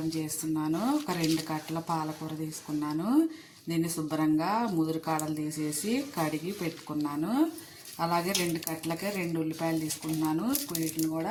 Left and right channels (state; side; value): identical; both; correlation 1.00